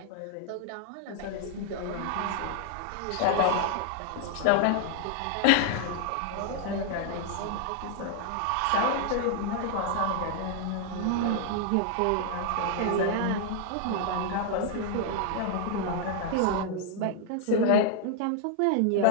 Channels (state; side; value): different; both; correlation 0.00